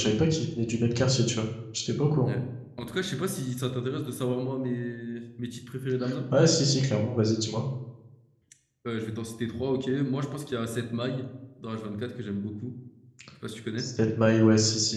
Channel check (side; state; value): both; identical; correlation 1.00